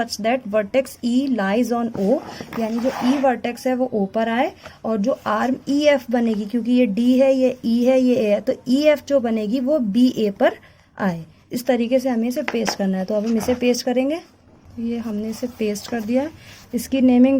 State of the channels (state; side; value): identical; both; correlation 1.00